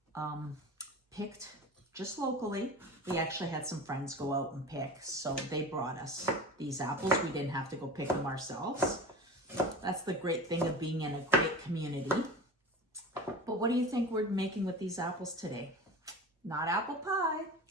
picked just locally. We actually had some friends go out and pick, so they brought us these apples. We didn't have to go pick them ourselves. That's the great thing of being in a great community. But what do you think we're making with these apples today? Not apple pie,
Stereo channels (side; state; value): both; normal; correlation 0.33